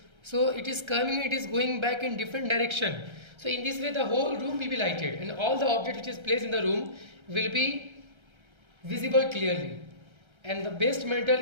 So it is going back in different direction. So in this way the whole room will be lighted, and all the object which is placed in the room will be visible clearly. And the best metal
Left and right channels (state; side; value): late; left; 1.3 ms